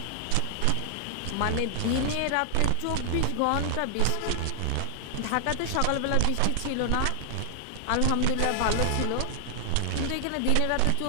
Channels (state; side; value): different; both; correlation 0.00